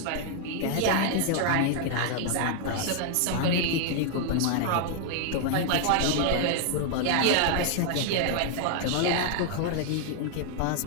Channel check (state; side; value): different; both; correlation 0.00